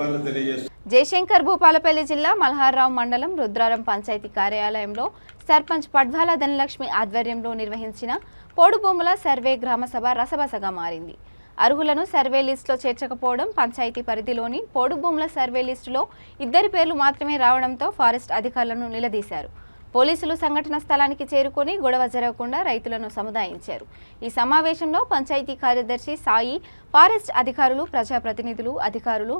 తెలియజేస్తూ జయశంకర్ భూపాలపల్లి జిల్లా మల్హార్రావు మండలం రుద్రారం పంచాయతీ కార్యాలయంలో సర్పంచ్ పడ్వాల ధనలక్ష్మి ఆధ్వర్యంలో నిర్వహించిన పోడు భూముల సర్వే గ్రామసభ రసబసగా మారింది. అర్హులను సర్వే లిస్టులో చేర్చకపోవడం, పంచాయతీ పరిధిలోని పోడు భూముల సర్వే లిస్టులో 2 పేర్లు మాత్రమే రావడంతో ఫారెస్ట్ అధికారులను నిలదీశారు. పోలీసులు సంఘటన స్థలానికి చేరుకొని గొడవ జరగకుండా రైతులను సముదాయించారు. ఈ సమావేశంలో పంచాయతీ కార్యదర్శి సాయి, ఫారెస్ట్ అధికారులు, ప్రజాప్రతినిధులు, అధికారులు,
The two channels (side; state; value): both; inverted; correlation -1.00